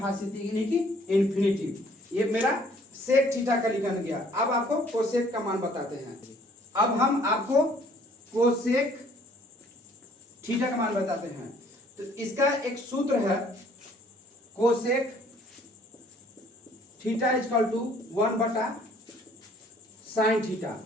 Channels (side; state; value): both; normal; correlation 0.59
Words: यानी कि इन्फिनिटिव। ये मेरा सेक थीटा का लिखा गया। अब आपको कोसेक का मान बताते हैं। अब हम आपको कोसेक थीटा का मान बताते हैं। तो इसका एक सूत्र है, कोसेक थीटा इक्वल टू 1/साइन थीटा,